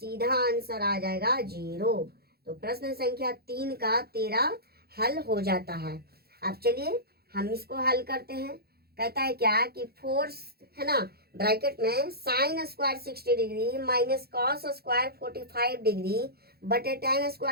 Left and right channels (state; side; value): late; left; 0.46 ms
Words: आंसर आ जाएगा 0। तो प्रश्न संख्या 3 का 13 हल हो जाता है। अब चलिए हम इसको हल करते हैं। कहता है क्या कि 4, है ना, ब्रैकेट में sine square 60 degree minus cos square 45 degree बटे tan